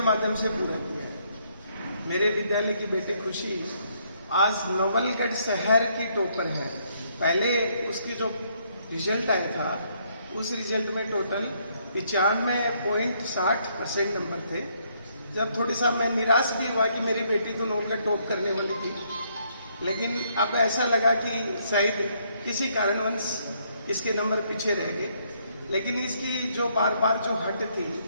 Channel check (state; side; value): inverted; both; correlation -0.71